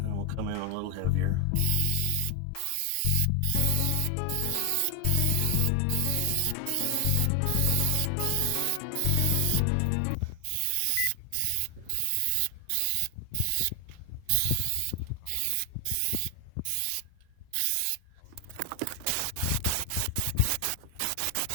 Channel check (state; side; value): different; both; correlation 0.00